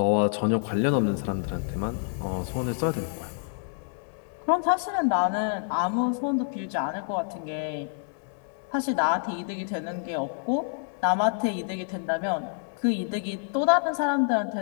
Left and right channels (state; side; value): silent; right; digital silence